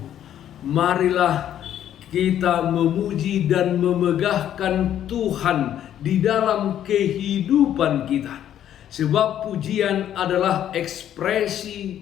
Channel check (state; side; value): quieter; right; 10.8 dB